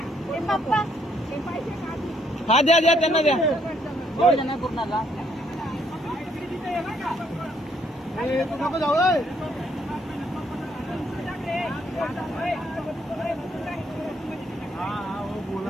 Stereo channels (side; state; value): both; normal; correlation 0.70